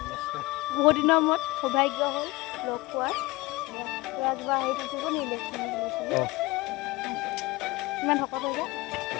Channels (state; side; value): quieter; right; 21.5 dB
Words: বহুত দিনৰ মূৰত সৌভাগ্য হ'ল লগ পোৱাৰ কিবা হেৰি থাকিব নি ইমান শকত হৈ যায়